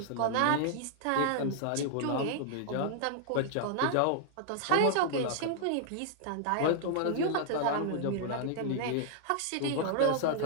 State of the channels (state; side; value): different; both; correlation -0.01